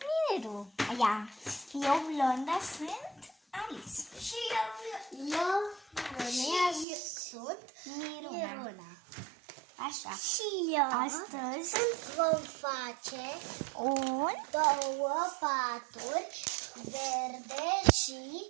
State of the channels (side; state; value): left; drops out; at 6.9 s